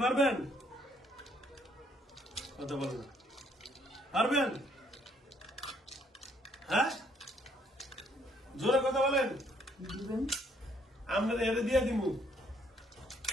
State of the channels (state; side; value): normal; both; correlation 0.67